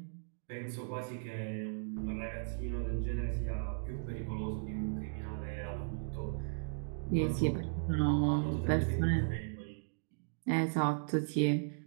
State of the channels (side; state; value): left; silent; digital silence